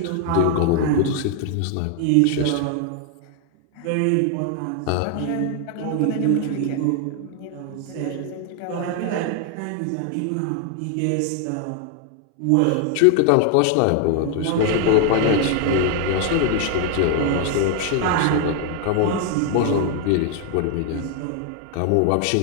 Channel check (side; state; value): both; different; correlation 0.00